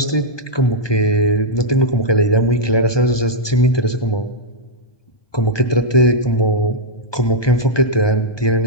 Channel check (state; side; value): late; right; 1.2 ms